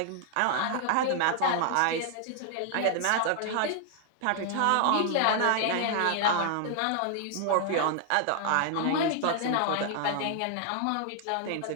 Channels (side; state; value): both; different; correlation 0.00